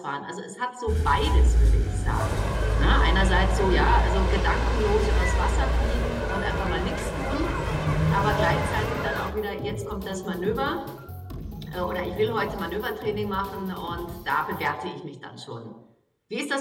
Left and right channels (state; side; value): identical; both; correlation 1.00